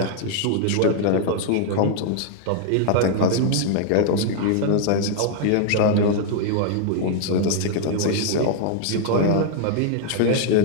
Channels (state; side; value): different; both; correlation 0.00